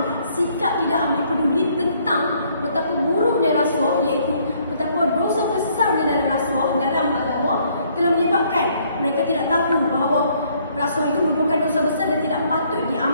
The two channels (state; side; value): inverted; both; correlation -0.66